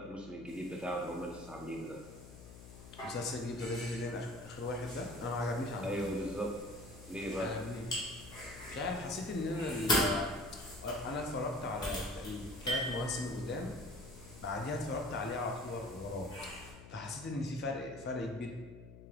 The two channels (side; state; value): left; noise; hum, 15 dB below the sound